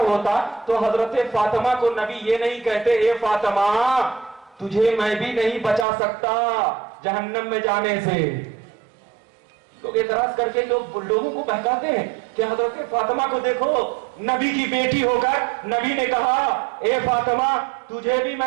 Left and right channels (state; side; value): drops out; left; at 5.9 s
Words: ہوتا تو حضرت فاطمہ کو نبی یہ نہیں کہتے اے فاطمہ تجھے میں بھی نہیں بچا سکتا جہنم میں جانے سے۔ لوگ اعتراض کر کے لوگوں کو بہکاتے ہیں کہ حضرت فاطمہ کو دیکھو، نبی کی بیٹی ہو کر نبی نے کہا اے فاطمہ تجھے بھی